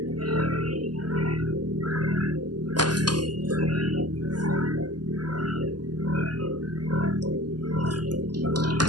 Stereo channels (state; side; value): late; left; 0.70 ms